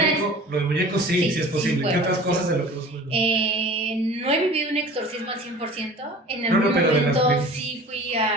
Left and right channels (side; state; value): both; normal; correlation 0.42